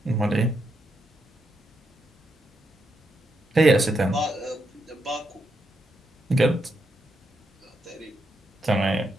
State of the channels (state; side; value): normal; both; correlation 0.81